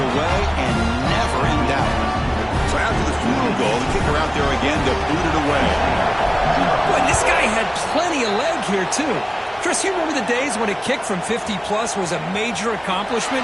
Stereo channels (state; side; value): identical; both; correlation 1.00